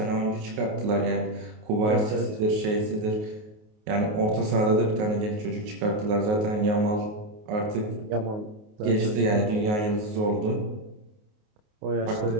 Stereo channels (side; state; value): left; late; 28 ms